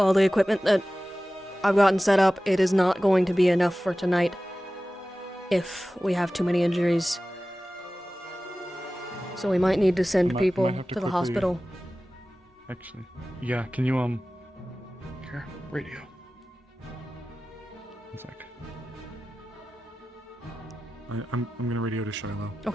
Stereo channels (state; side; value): normal; both; correlation 0.96